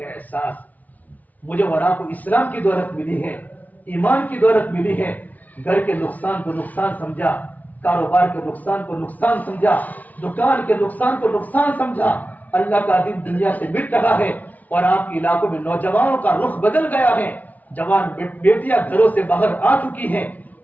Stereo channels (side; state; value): right; late; 0.075 ms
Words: احساس۔ مجھے اور آپ کو اسلام کی دولت ملی ہے، ایمان کی دولت ملی ہے، گھر کے نقصان کو نقصان سمجھا، کاروبار کے نقصان کو نقصان سمجھا، دکان کے نقصان کو نقصان سمجھا، اللہ کا دین دنیا سے مٹ رہا ہے، اور آپ کے علاقوں میں نوجوانوں کا رخ بدل گیا ہے، جوان بیٹیاں گھروں سے باہر آ چکی ہیں،